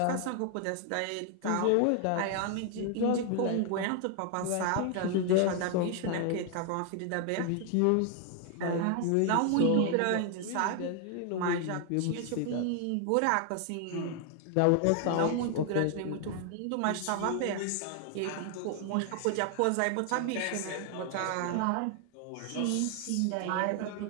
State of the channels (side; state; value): both; different; correlation 0.00